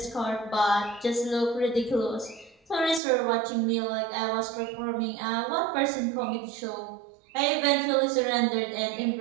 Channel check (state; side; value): drops out; left; at 3.0 s